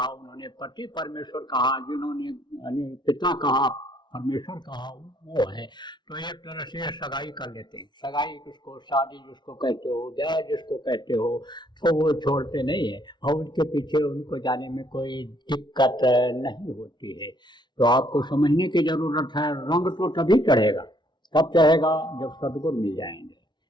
उन्होंने पति परमेश्वर कहा, जिन्होंने पिता कहा परमेश्वर कहा, वो है। तो एक तरह से सगाई कर लेते हैं। सगाई किसको, शादी जिसको कहते हो, ब्याह जिसको कहते हो, तो वो छोड़ते नहीं है और उनके पीछे उनको जाने में कोई दिक्कत नहीं होती है। तो आपको समझने की जरूरत है। रंग तो तभी चढ़ेगा, कब चढ़ेगा? जब सदगुरु मिल जाएंगे,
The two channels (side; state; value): right; late; 0.21 ms